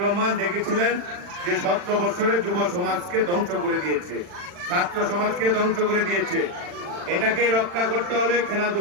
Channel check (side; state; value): left; late; 40 ms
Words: রহমান দেখেছিলেন যে 17 বছরে যুব সমাজকে ধ্বংস করে দিয়েছে, ছাত্র সমাজকে ধ্বংস করে দিয়েছে। এটাকে রক্ষা করতে হলে